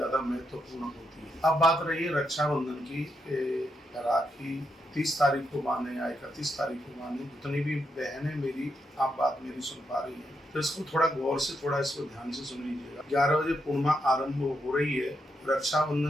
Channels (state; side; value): normal; both; correlation 0.81